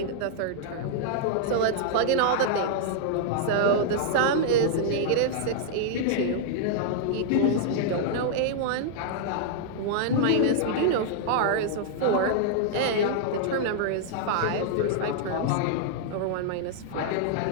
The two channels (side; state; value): both; different; correlation -0.01